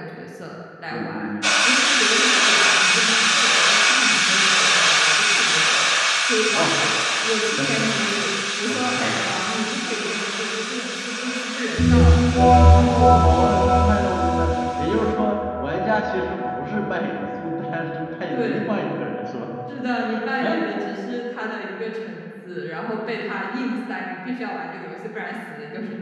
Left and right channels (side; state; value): both; identical; correlation 1.00